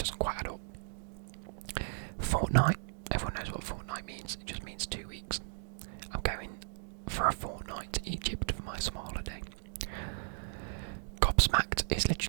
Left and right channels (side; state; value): left; silent; digital silence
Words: quite add up. Fortnight. Everyone knows what fortnight means. It just means 2 weeks. I'm going for a fortnight to Egypt for my summer holiday. Gobsmacked is